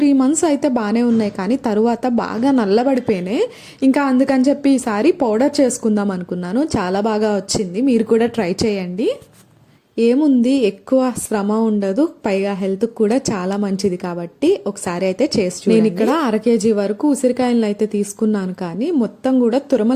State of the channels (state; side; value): identical; both; correlation 1.00